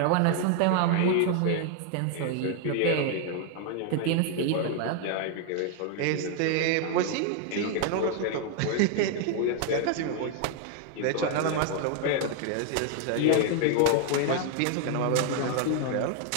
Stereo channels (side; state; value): both; different; correlation 0.00